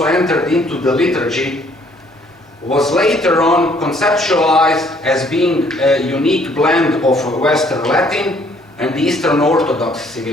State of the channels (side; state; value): both; normal; correlation 0.62